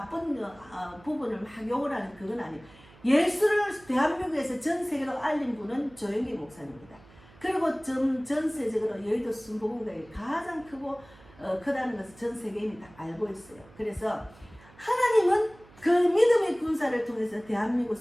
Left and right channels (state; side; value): noise; right; hum, 24 dB below the sound